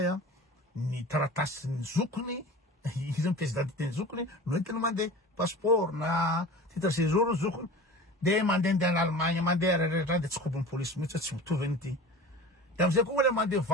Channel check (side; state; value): both; normal; correlation 0.36